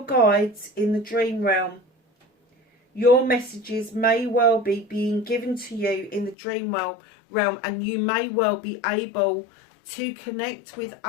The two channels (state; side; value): drops out; right; at 6.4 s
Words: guides in the dream realm. Your messages may well be being given to you in the dream realm, and you may well be able to connect with